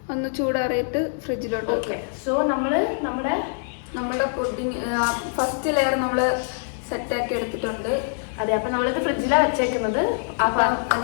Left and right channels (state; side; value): silent; right; 62 dB below the other